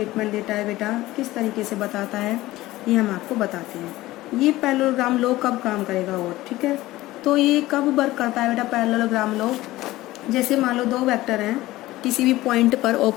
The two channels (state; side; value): quieter; right; 17.3 dB